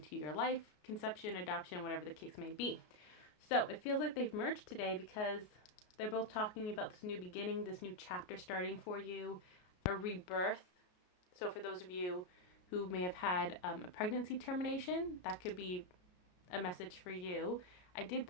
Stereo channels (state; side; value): late; right; 33 ms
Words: your life, conception, adoption, whatever the case may be. So it feels like they've merged today because they're both talking about this new beginning, this new chapter starting for you, a rebirth. So for those of you who may have had a pregnancy termination, that could be a message for you. I did